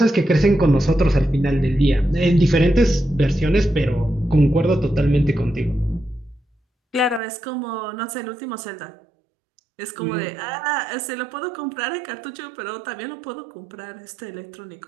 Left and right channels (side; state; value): left; drops out; at 7.2 s